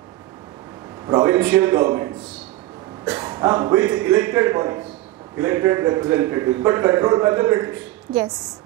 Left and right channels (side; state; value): left; quieter; 16.6 dB